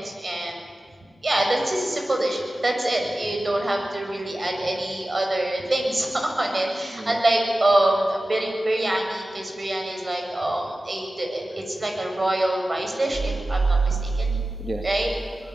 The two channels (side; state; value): both; normal; correlation 0.95